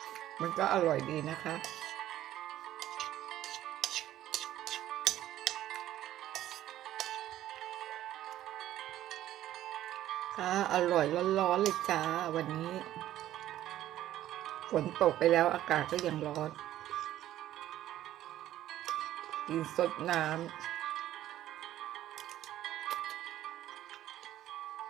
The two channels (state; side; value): quieter; left; 13.1 dB